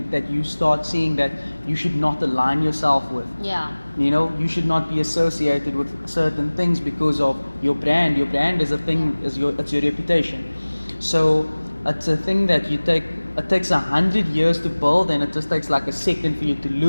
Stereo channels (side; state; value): both; inverted; correlation -1.00